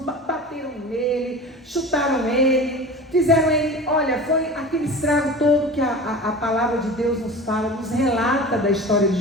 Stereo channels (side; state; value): both; normal; correlation 0.35